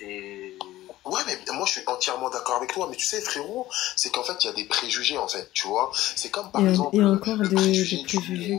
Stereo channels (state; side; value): quieter; right; 15.7 dB